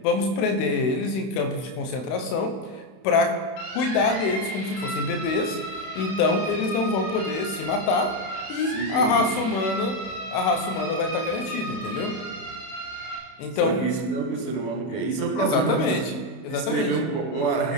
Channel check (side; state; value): right; late; 31 ms